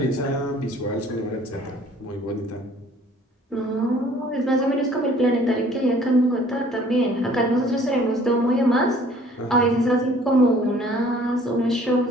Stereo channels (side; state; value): both; normal; correlation 0.55